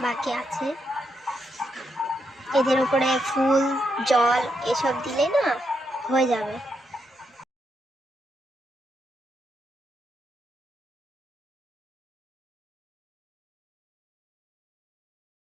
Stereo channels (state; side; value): normal; both; correlation 0.81